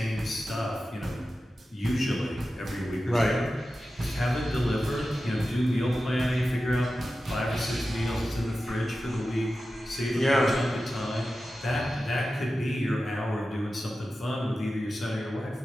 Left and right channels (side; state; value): both; normal; correlation 0.93